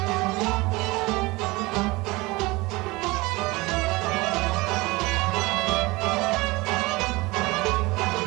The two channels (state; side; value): quieter; left; 22.7 dB